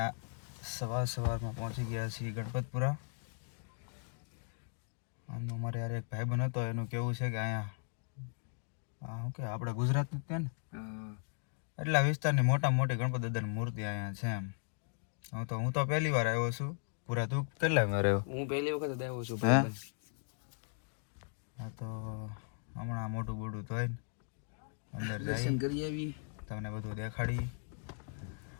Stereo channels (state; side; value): silent; right; 53 dB below the other